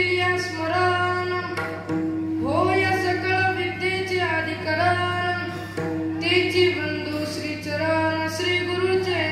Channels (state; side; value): identical; both; correlation 1.00